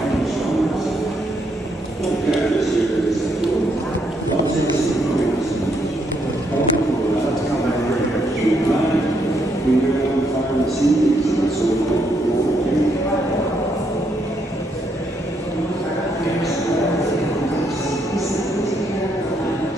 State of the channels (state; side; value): normal; both; correlation 0.76